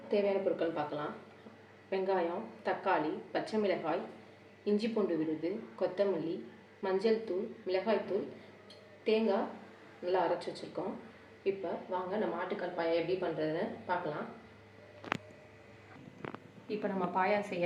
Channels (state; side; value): identical; both; correlation 1.00